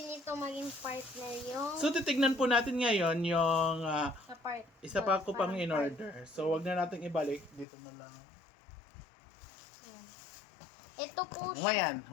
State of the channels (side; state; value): right; drops out; at 7.7 s